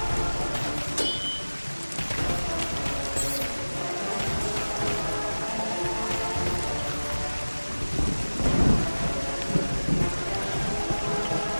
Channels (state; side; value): inverted; both; correlation -1.00